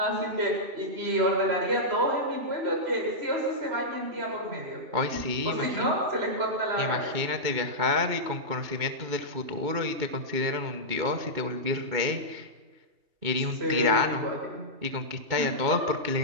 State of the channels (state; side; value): late; left; 2.3 ms